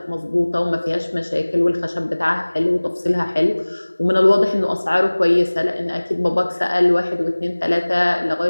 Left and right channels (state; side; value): inverted; both; correlation -1.00